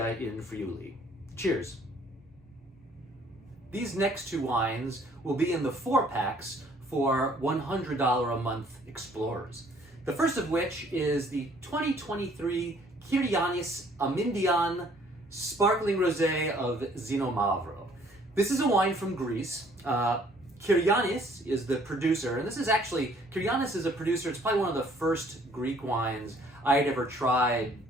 in Friuli. Cheers. These next two wines will be in the 4-packs for $100 a month explorers. The first of which is the 2023 Kyrianis Amindian Sparkling Rosé of Zinomavro. This is a wine from Greece. Kyrianis is the producer, and Kyrianis is a producer. It's probably one of the first Greek wines I had ever tried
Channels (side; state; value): both; normal; correlation 0.60